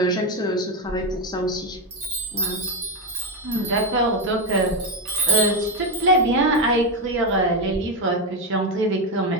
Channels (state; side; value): normal; both; correlation 0.10